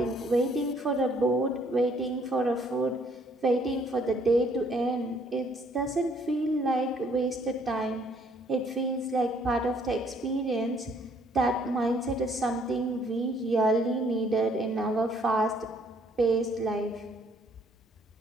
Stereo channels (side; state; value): both; normal; correlation 0.64